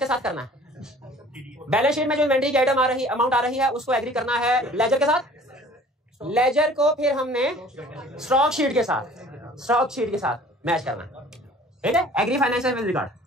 साथ करना है। बैलेंस शीट में जो इन्वेंट्री की आइटम आ रही, अमाउंट आ रही है, उसको एग्री करना है लेजर के साथ, लेजर को फिर हमने स्टॉक शीट के साथ मैच करना है, ठीक है। Agree financial with record.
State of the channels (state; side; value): normal; both; correlation 0.49